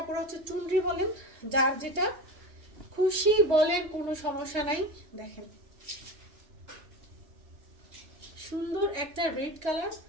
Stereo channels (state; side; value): late; left; 3.2 ms